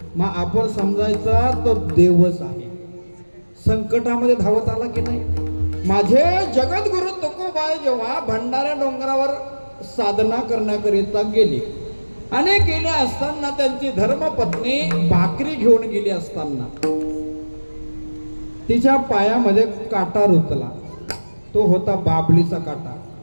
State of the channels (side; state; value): both; inverted; correlation -1.00